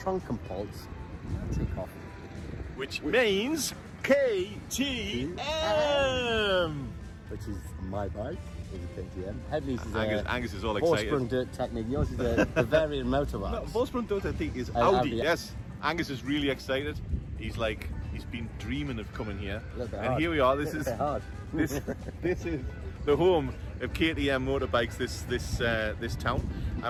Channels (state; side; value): identical; both; correlation 1.00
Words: Matikhoff. Which means KTM! Which is my bike, is a KTM. Headley's is Angus is all excited. Horse-sprung dirt technique. Yours is a Bavarian motorbike. No, Volkswagen Dirt, I think, is Audi. Audi. Yes. Angus is really excited. He's been dreaming of coming here. And hard. Here we are. This is hard. this is the home of KTM motorbikes, this town.